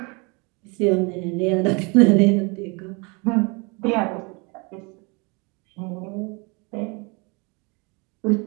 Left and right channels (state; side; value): quieter; left; 30.1 dB